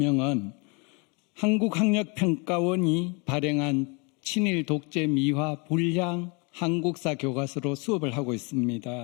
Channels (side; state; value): right; quieter; 31.5 dB